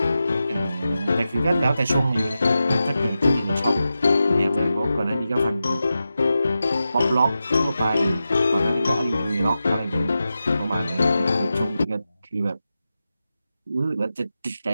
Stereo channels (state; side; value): inverted; both; correlation -0.92